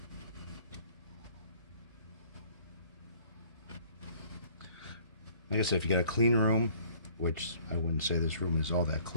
Like I said, if you got a clean room, which I wouldn't say this room is all that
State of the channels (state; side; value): inverted; both; correlation -0.55